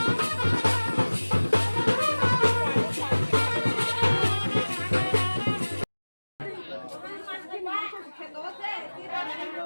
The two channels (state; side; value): inverted; both; correlation -1.00